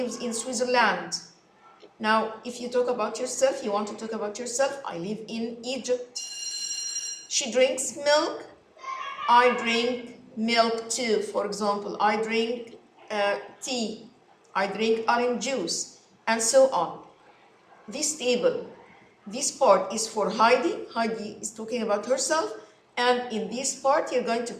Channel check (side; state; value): both; identical; correlation 1.00